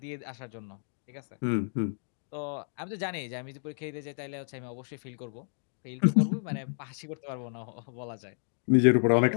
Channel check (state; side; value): silent; right; 57 dB below the other